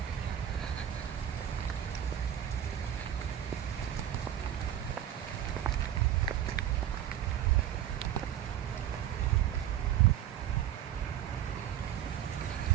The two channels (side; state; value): left; quieter; 10.8 dB